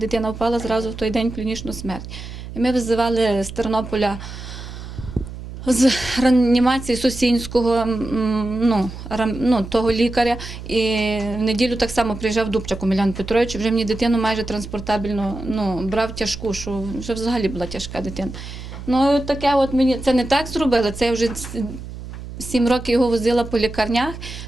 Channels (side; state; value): right; noise; hum, 11 dB below the sound